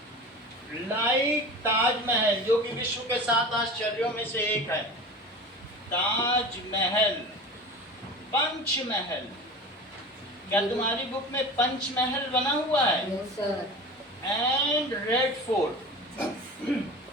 like Taj Mahal, जो कि विश्व के 7 आश्चर्यों में से एक है, ताजमहल, पंचमहल, क्या तुम्हारी बुक में पंचमहल बना हुआ है? Yes, sir. And red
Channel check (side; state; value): both; normal; correlation 0.34